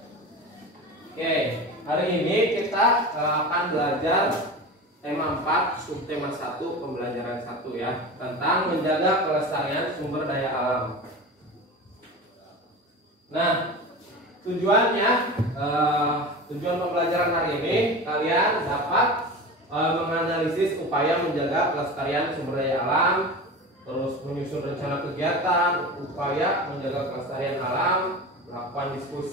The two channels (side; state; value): both; normal; correlation 0.30